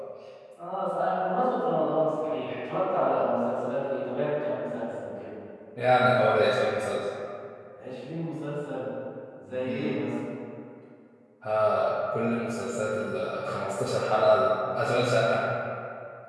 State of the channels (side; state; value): both; identical; correlation 1.00